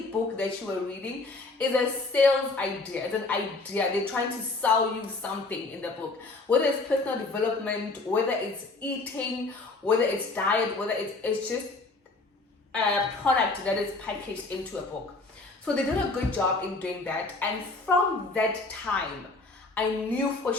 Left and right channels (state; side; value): quieter; right; 3.4 dB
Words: book that you are reading is a sales idea. It's an idea. They're trying to sell you something in the book, whether it's personal development, whether it's eating, whether it's diet, whether it's just a product that is packaged into a book. So they did a good job in doing that, and from that time I knew for